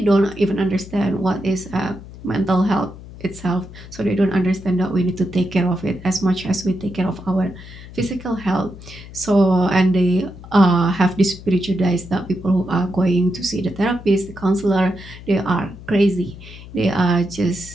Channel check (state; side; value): noise; left; hum, 16 dB below the sound